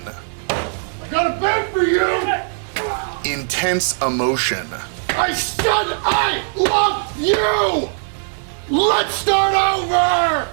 I got a bed for you! intense emotion, I said I love you! Let's start over!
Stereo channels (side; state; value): left; silent; 66 dB below the other